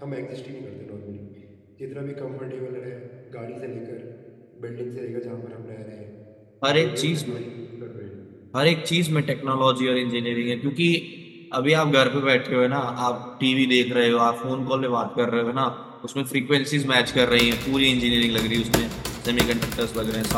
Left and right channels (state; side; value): identical; both; correlation 1.00